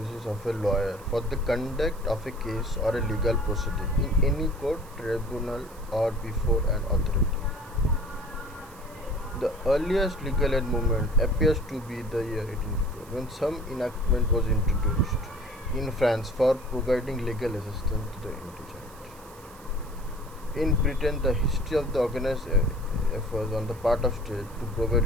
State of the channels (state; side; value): noise; right; hiss, 23 dB below the sound